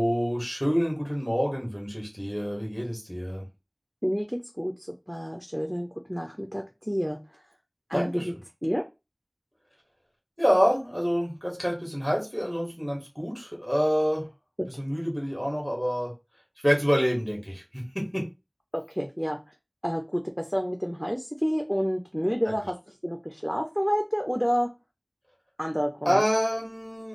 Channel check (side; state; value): both; identical; correlation 1.00